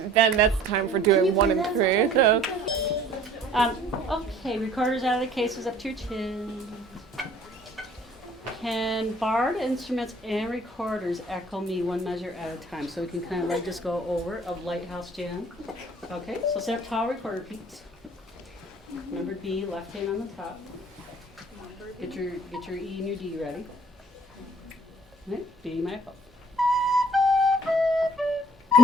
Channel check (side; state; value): both; normal; correlation 0.54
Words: that's time for doing 1 and 3. So. Okay, recorders out of the cases, up to your chin. Can barred instruments and recorders echo me 1 measure at a time? So we can kind of like just go over of Lighthouse Jam. Okay, so stand up tall, recorder peaks. Number B, left hand on the top. Get your E and your D ready. Okay, B, my fault.